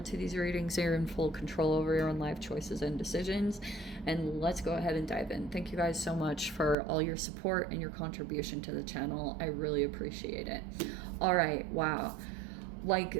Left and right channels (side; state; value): left; drops out; at 6.8 s